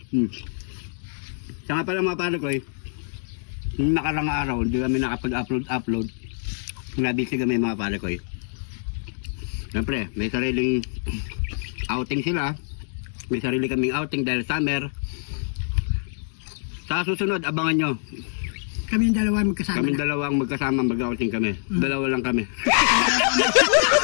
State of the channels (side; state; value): right; silent; digital silence